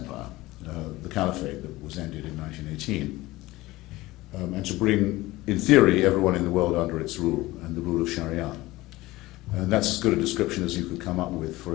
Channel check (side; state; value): right; quieter; 18.9 dB